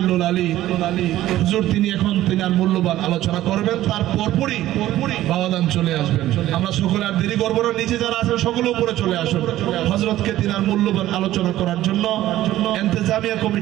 আলী হুজুর তিনি আর মূল্যবান আলোচনা করবেন। তার পরপরই বাবাজান চলে আসবেন। আমরা সকলে আর দেরি করবো না, নিচে যারা আছেন সকলে উপরে চলে আসুন হযরতকে তিনার মূল্যবান আলোচনা করার জন্য ইন্তেজামিয়া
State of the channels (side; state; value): left; quieter; 14.4 dB